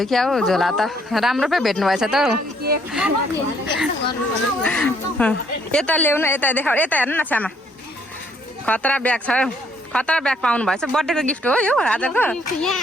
क्या हो झोला त राम्रो पो भेट्नु भएछ त हौ यता ल्याउनु यता देखाउ यता हेर्नु न छ्यामा खतरा ब्याग छ खतरा ब्याग पाउनु भएछ बर्थडेको गिफ्ट हो यो आजको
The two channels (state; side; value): normal; both; correlation 0.67